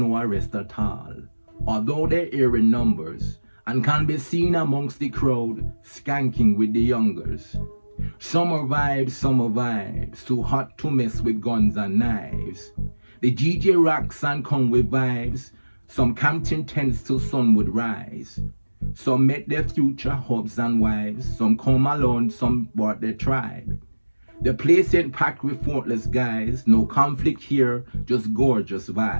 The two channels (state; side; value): inverted; both; correlation -1.00